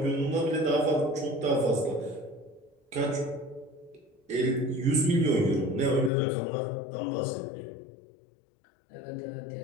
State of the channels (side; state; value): right; drops out; at 6.1 s